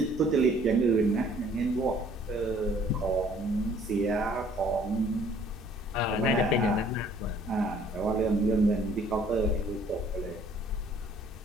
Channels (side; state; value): both; normal; correlation 0.57